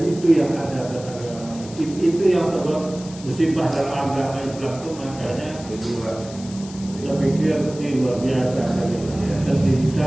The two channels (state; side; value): noise; left; hiss, 17 dB below the sound